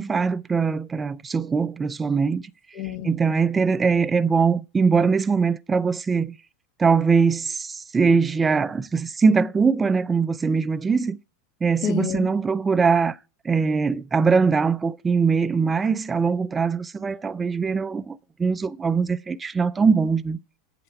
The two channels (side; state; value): left; quieter; 4.7 dB